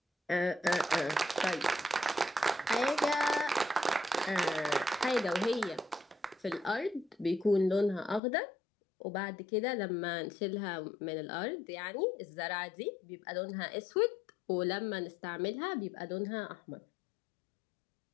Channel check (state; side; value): drops out; right; at 8.2 s